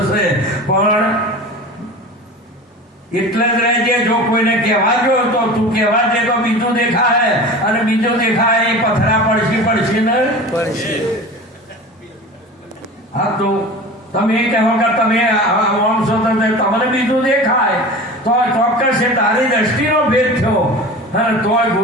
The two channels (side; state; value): both; normal; correlation 0.35